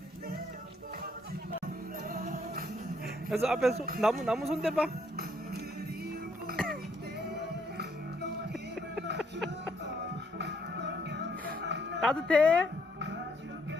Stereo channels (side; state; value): both; normal; correlation 0.70